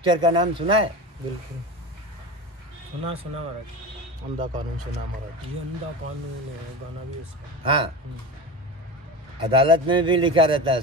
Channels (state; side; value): normal; both; correlation 0.26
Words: का नाम सुना है? बिल्कुल सुना महाराज। अंधा कानून सुना महाराज। ये अंधा कानून है, गाना भी उसका। हाँ, अदालत में भी लिखा रहता है